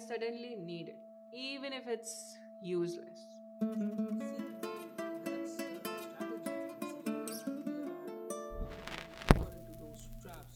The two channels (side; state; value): both; identical; correlation 1.00